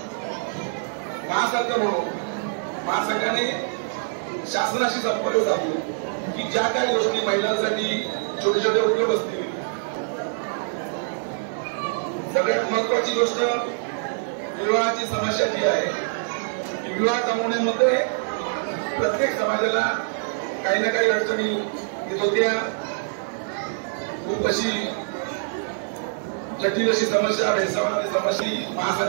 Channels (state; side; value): silent; left; 62 dB below the other